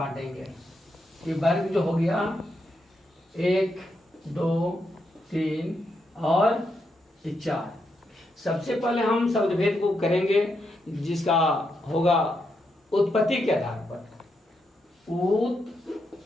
ये वर्ग जो हो गया 1, 2, 3 और 4। सबसे पहले हम शब्द भेद को करेंगे जिसका होगा उत्पत्ति के आधार पर।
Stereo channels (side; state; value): both; normal; correlation 0.82